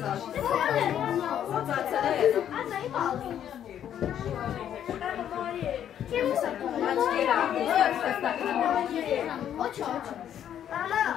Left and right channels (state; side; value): quieter; right; 10.0 dB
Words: Srca se redu. Hoću.